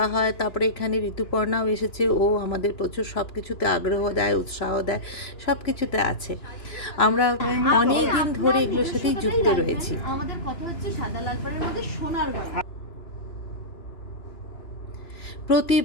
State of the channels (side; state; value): right; late; 2.9 ms